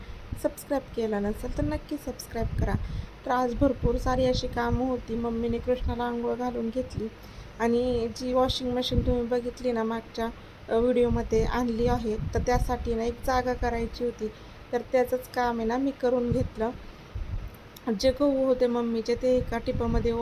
सबस्क्राईब केला नसेल तर नक्की सबस्क्राईब करा. तर आज भरपूर सारी अशी कामं होती. मम्मीने कृष्णाला आंघोळ घालून घेतली आणि जी वॉशिंग मशीन तुम्ही बघितली ना मागच्या व्हिडिओमध्ये आणली आहे, तर त्यासाठी ना एक जागा करायची होती. तर त्याचंच काम आहे ना मी करून घेतलं. जे गहू होते मम्मीचे ते एका टिपामध्ये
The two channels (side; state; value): both; identical; correlation 1.00